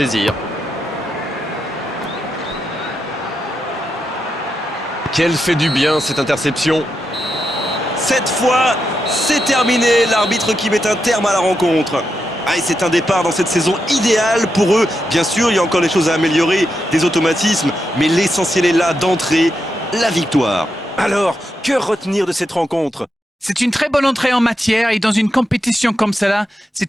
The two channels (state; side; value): normal; both; correlation 0.85